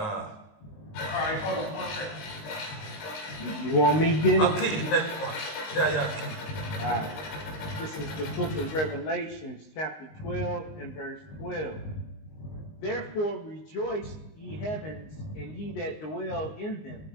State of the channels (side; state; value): right; late; 19 ms